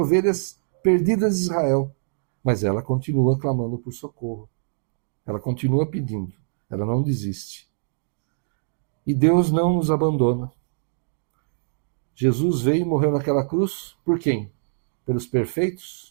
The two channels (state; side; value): silent; left; digital silence